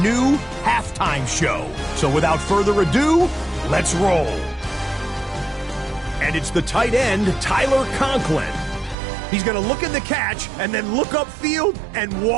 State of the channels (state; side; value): drops out; left; at 9.0 s